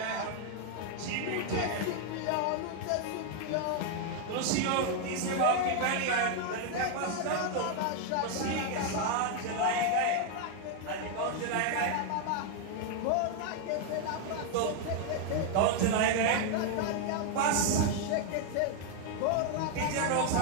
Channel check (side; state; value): both; different; correlation 0.00